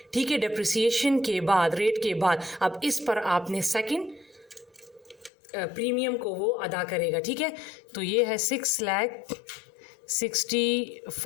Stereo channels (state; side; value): drops out; right; at 5.3 s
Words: ठीक है, डेप्रिसिएशन के बाद, रेट के बाद, अब इस पर आपने सेकंड प्रीमियम को वो अदा करेगा। ठीक है, तो ये है